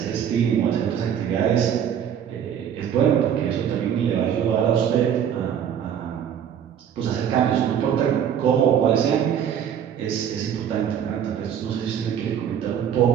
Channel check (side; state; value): left; quieter; 8.9 dB